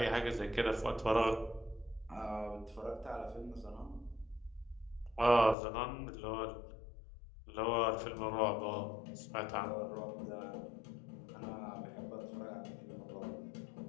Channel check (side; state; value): right; drops out; at 5.6 s